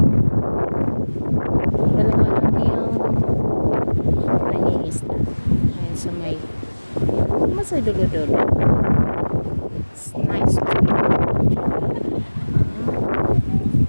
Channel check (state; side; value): inverted; both; correlation -1.00